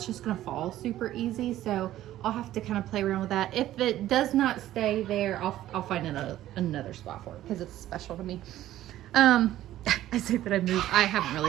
just gonna fall super easy. So I'll have to kind of play around with that. If it does not stay there, I'll find another spot for it because it's special to me. I say that I moved. I haven't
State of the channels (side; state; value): left; quieter; 13.7 dB